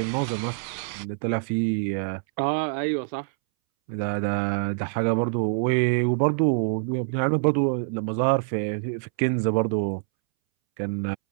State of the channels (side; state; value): left; silent; 61 dB below the other